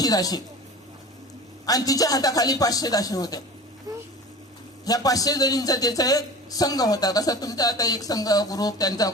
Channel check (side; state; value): both; normal; correlation 0.36